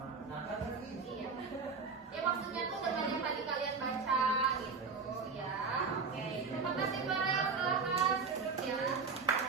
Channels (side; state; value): left; quieter; 4.9 dB